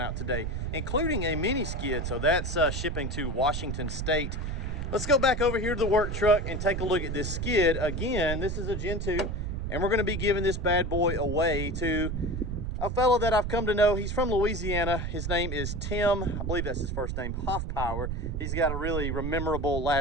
out today, including a mini skid, so that's shipping to Washington State. Let's go back over here to the work truck and take a look at this skid. Again, this is a Gen 2. And we're going to be giving this bad boy away to a fellow that I've come to know. He's from Louisiana. His name is Tim. I believe that's his first name, Hoffpower. He's got a really memorable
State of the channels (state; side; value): noise; right; rumble, 3 dB below the sound